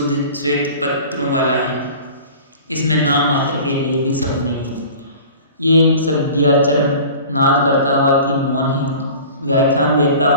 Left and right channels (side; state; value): both; inverted; correlation -0.42